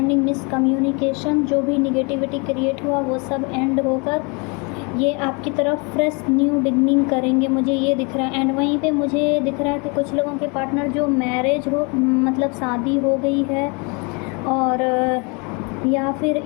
मिसकम्युनिकेशन, जो भी निगेटिविटी क्रिएट हुआ वो सब एंड होकर ये आपकी तरफ फ्रेश न्यू बिगनिंग करेंगे, मुझे ये दिख रहा है। एंड वहीं पे मुझे दिख रहा है कि कुछ लोगों के पार्टनर जो मैरिज हो, मतलब शादी हो गई है और या फिर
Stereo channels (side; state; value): right; quieter; 31.7 dB